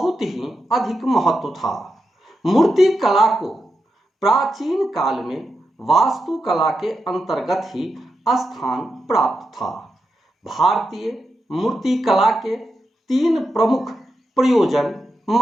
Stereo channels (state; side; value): normal; both; correlation 0.87